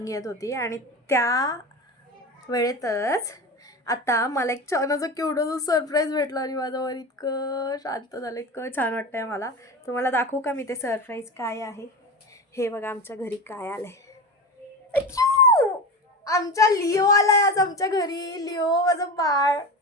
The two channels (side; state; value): both; normal; correlation 0.26